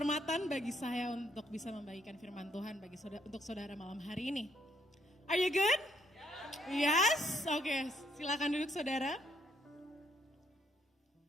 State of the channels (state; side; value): normal; both; correlation 0.71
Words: bagi saya untuk bisa membagikan firman Tuhan untuk saudara malam hari ini. Are you good? Yes? Oke, silakan duduk saudara.